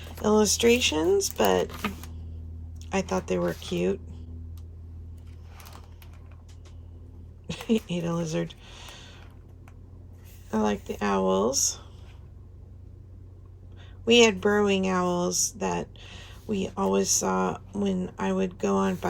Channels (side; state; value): both; identical; correlation 1.00